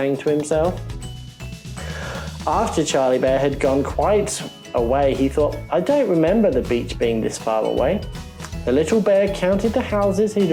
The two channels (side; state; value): both; identical; correlation 1.00